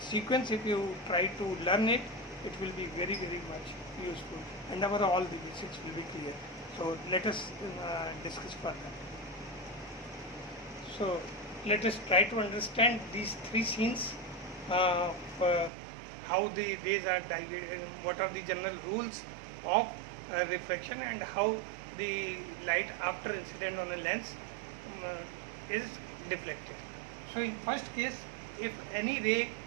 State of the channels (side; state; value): left; drops out; at 15.7 s